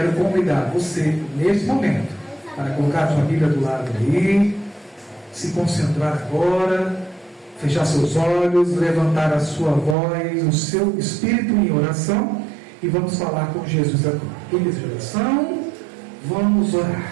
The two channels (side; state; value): left; drops out; at 10.0 s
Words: convidar você neste momento para colocar a sua Bíblia do lado aí, se concentrar agora, fechar seus olhos, levantar a sua voz, o seu espírito em oração, e vamos falar com Jesus agora. Queridos de oração, vamos